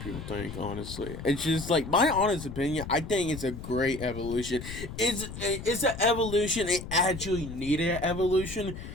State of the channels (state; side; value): noise; left; rumble, 10 dB below the sound